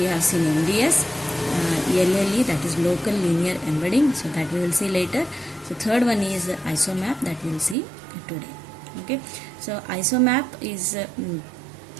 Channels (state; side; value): drops out; left; at 7.8 s